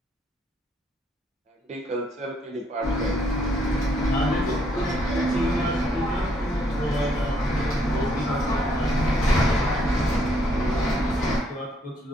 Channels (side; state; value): both; normal; correlation 0.70